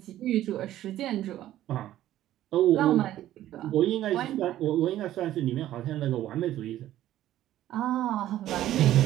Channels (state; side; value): quieter; left; 13.3 dB